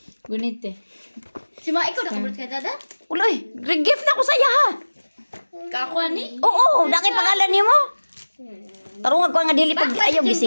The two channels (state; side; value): inverted; both; correlation -1.00